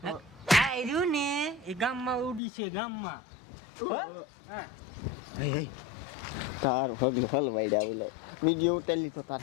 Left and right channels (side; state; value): right; drops out; at 2.4 s